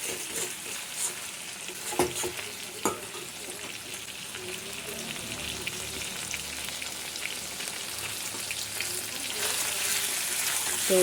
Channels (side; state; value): both; identical; correlation 1.00